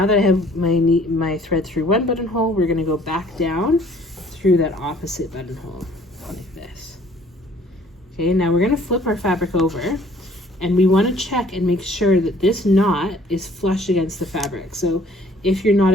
that I have my thread through one buttonhole, we're going to go back down through that opposite buttonhole like this. Okay, now we're going to flip our fabric over, and we want to check and make sure that this knot is flush against the fabric. So if your knot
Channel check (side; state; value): both; normal; correlation 0.57